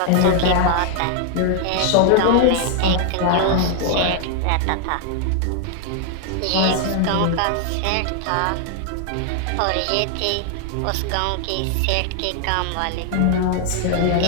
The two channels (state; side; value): different; both; correlation 0.00